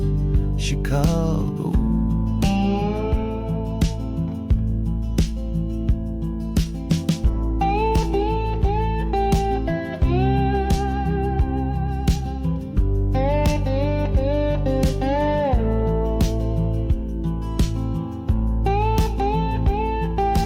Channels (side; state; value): both; identical; correlation 1.00